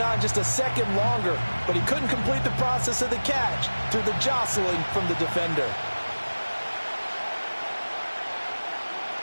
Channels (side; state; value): both; inverted; correlation -1.00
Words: on just a second longer. But he couldn't complete the process of the catch through the jostling from the defender.